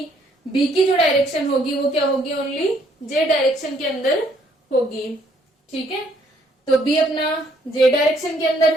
बी की जो डायरेक्शन होगी वो क्या होगी, ओनली जे डायरेक्शन के अंदर होगी। ठीक है, तो बी अपना जे डायरेक्शन के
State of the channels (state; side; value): normal; both; correlation 0.66